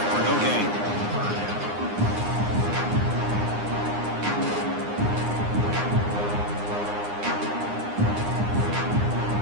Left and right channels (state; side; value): late; left; 9.7 ms